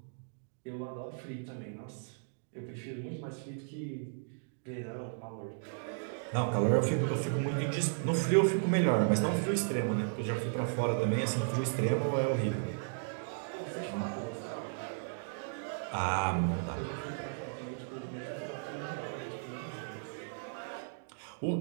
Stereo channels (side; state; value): left; silent; digital silence